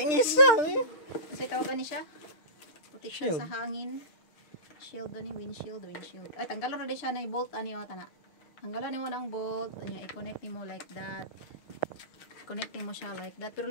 Kasi tawagan niya siya. Protection sa hangin. Shield doon yung windshield. Ay, tanggalan na din siya na yung bolt. Ano yung tanga? Tanggalan mo ng bolt. Ano, i-connect mo like that. Connecting mo siya like that. Pero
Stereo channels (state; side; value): late; right; 6.4 ms